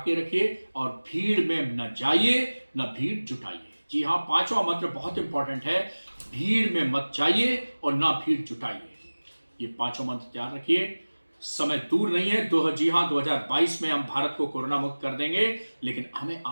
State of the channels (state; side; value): inverted; both; correlation -1.00